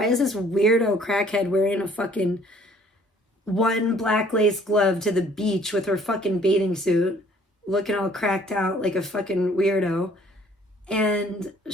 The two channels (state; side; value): normal; both; correlation 0.58